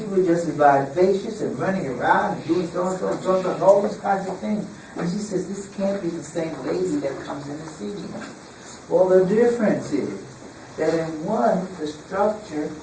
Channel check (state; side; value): identical; both; correlation 1.00